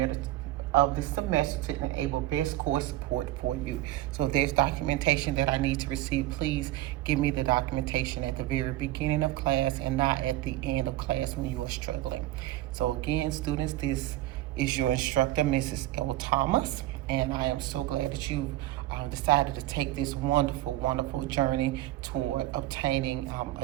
semester to enable best course support for you. So if there's documentation that I need to receive, please give me the documentation at the very beginning of class and not at the end of class when you are struggling. So again, students, this is your instructor, Mrs. L. Thomas, and I am so glad that you've decided to take this wonderful, wonderful journey toward obtaining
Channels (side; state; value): left; quieter; 15.6 dB